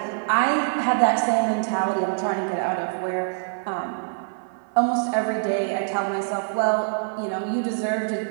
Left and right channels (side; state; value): left; silent; 58 dB below the other